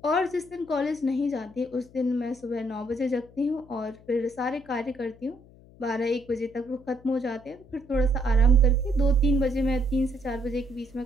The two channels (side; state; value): left; noise; hum, 24 dB below the sound